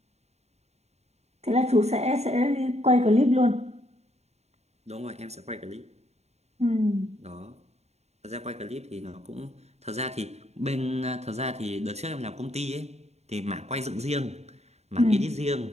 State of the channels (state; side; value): late; left; 0.31 ms